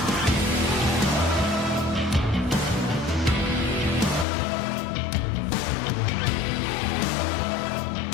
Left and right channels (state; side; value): drops out; right; at 4.2 s